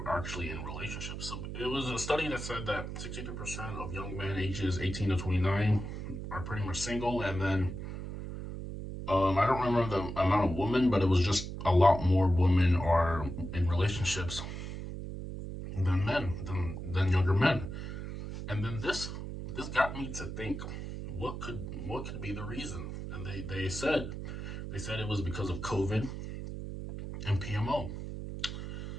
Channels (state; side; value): noise; right; hum, 7 dB below the sound